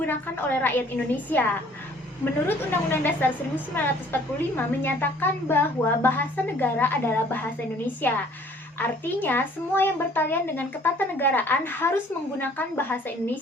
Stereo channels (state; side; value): normal; both; correlation 0.56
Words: oleh rakyat Indonesia. Menurut Undang-Undang Dasar 1945 menyatakan bahwa bahasa negara adalah bahasa Indonesia. Artinya, semua yang bertalian dengan ketatanegaraan harus menggunakan bahasa